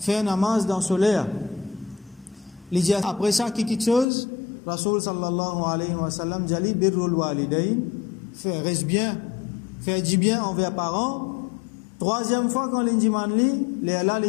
namaz dans solaire. Il dit après ça quelque chose Rasul sallallahu alayhi wa sallam dit birrul walidain, faire reste bien, faire du bien envers parents. Troisième fois quand l'indiman li, là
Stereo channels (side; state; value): right; drops out; at 4.0 s